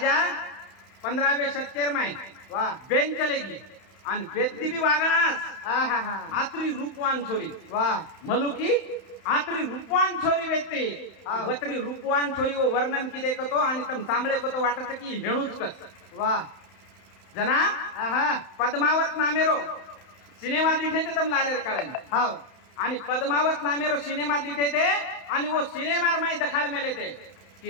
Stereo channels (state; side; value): late; right; 31 ms